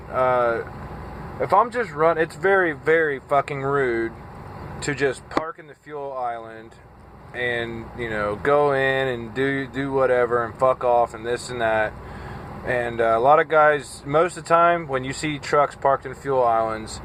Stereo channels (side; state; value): both; identical; correlation 1.00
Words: If I'm just running, it's very, very fucking rude to just park in the fuel island and, you know, go in and do whatever and fuck off and this and that. And a lot of guys, most of the time, when you see trucks parked in fuel islands,